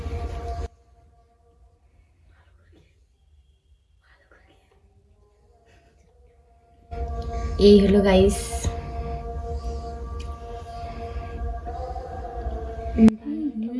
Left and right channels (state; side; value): identical; both; correlation 1.00